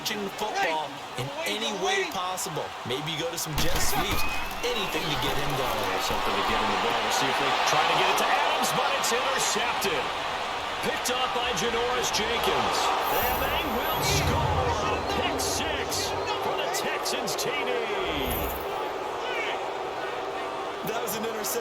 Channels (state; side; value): identical; both; correlation 1.00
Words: the football in any way possible. Maybe you go to some jet sweeps. Anything to get him going. Something to get him the ball. We'll see if they try to get it to Adams, but it's intercepted. Picked up by Janoris Jenkins. And they will score a pick 6 for the Texans TD. That was an